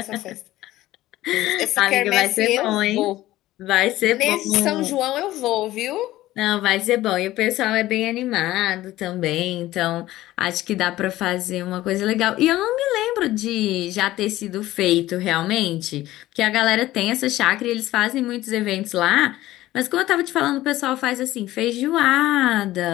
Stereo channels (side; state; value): right; quieter; 15.9 dB